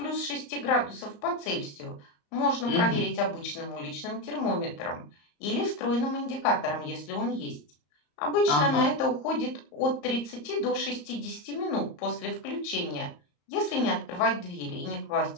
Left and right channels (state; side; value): late; right; 34 ms